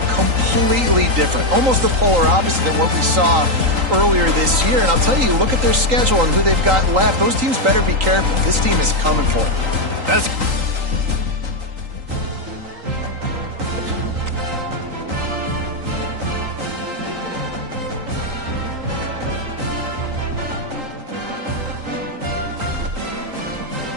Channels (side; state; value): left; late; 3.8 ms